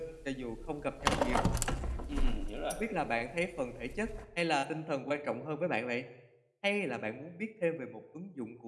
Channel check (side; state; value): both; identical; correlation 1.00